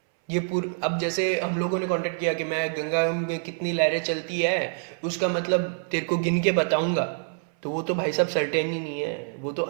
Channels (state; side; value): silent; left; 61 dB below the other